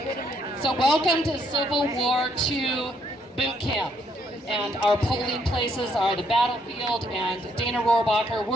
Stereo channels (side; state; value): both; normal; correlation 0.71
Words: So welcome to Civil War II boot camp. And our polling places are the battlefield, and Dana Rohrabacher,